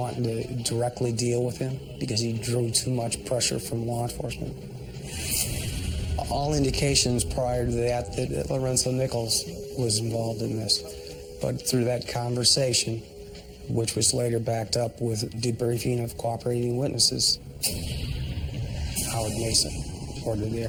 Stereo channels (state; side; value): identical; both; correlation 1.00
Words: to directly deal with him because he drew too much pressure from law enforcement. All indications prior to that Lorenzo Nichols was involved in this. But through that conversation, which was later backed up with debriefing of cooperating witnesses, Howard Mason ordered the